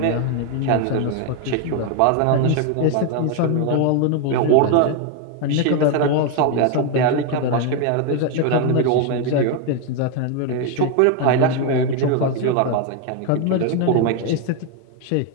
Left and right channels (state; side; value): different; both; correlation 0.01